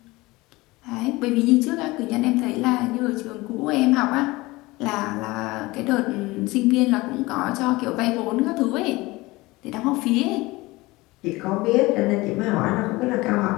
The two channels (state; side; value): quieter; right; 21.3 dB